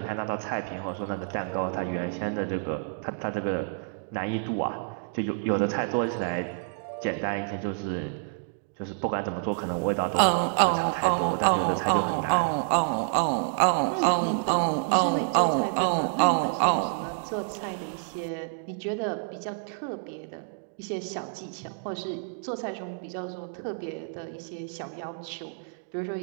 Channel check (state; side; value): silent; left; digital silence